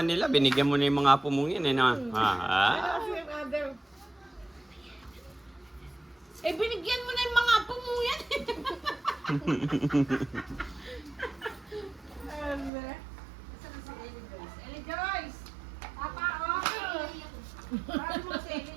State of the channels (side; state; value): left; drops out; at 12.7 s